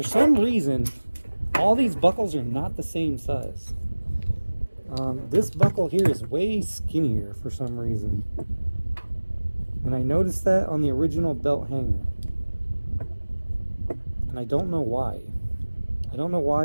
some reason, all these buckles are not the same size. This buckle here is way skinnier for some reason. And I noticed that on the original belt hanger. And I don't know why. I don't know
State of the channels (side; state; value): both; inverted; correlation -1.00